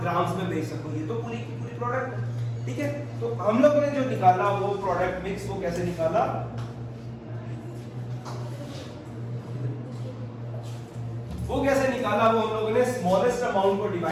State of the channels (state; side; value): identical; both; correlation 1.00